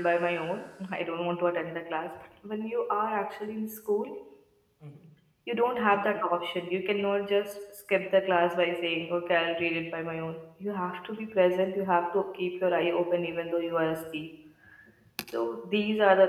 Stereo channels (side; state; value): both; identical; correlation 1.00